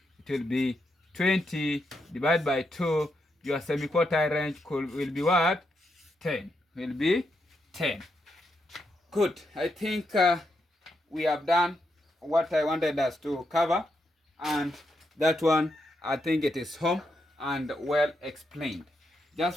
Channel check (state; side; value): normal; both; correlation 0.82